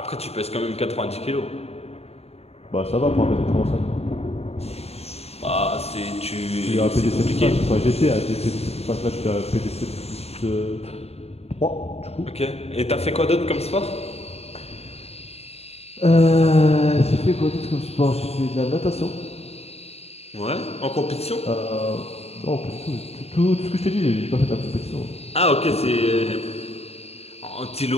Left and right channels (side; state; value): right; late; 0.30 ms